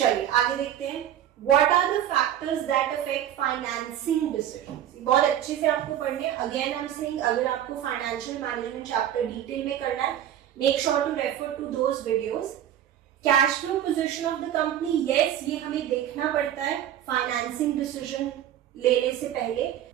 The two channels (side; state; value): left; quieter; 11.0 dB